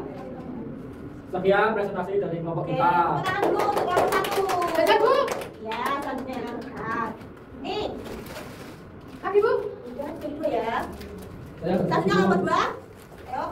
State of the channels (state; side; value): identical; both; correlation 1.00